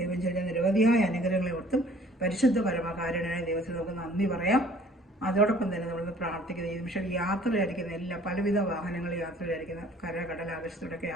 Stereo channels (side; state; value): both; normal; correlation 0.54